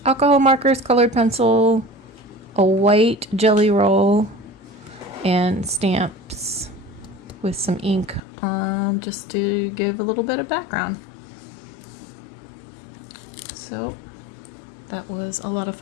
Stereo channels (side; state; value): right; drops out; at 8.2 s